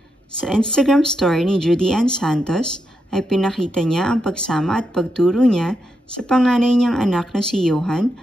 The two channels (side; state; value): both; normal; correlation 0.84